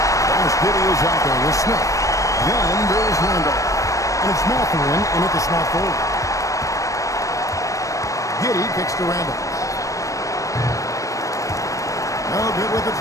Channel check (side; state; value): right; late; 0.16 ms